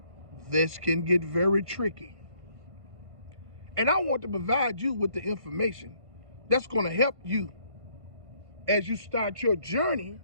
this can get very tricky. And I want to provide you with the information that's going to help you as you start your journey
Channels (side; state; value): left; late; 1.5 ms